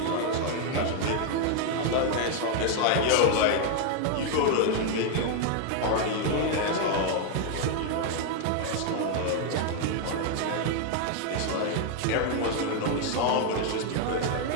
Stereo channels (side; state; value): both; different; correlation 0.00